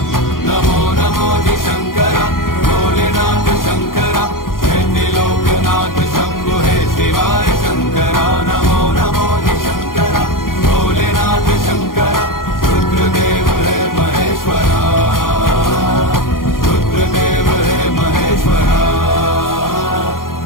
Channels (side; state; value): right; late; 0.91 ms